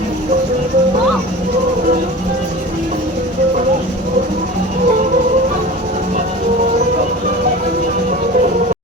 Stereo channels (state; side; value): normal; both; correlation 0.36